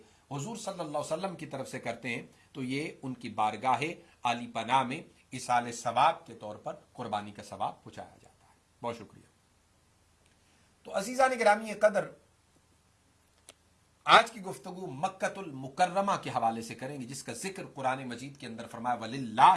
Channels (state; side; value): identical; both; correlation 1.00